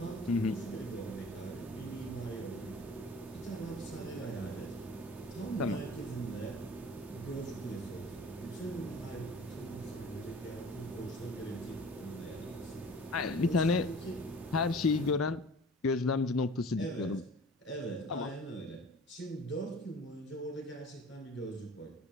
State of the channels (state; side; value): normal; both; correlation 0.44